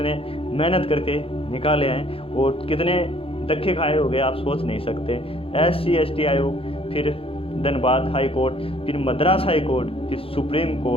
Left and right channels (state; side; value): late; right; 0.27 ms